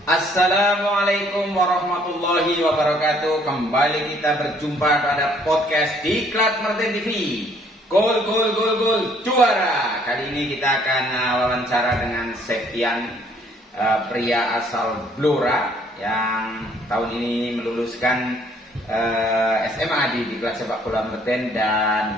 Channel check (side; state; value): both; normal; correlation 0.62